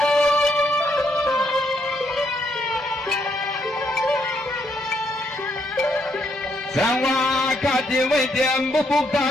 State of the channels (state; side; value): normal; both; correlation 0.74